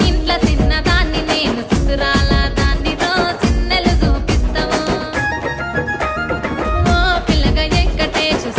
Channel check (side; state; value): both; identical; correlation 1.00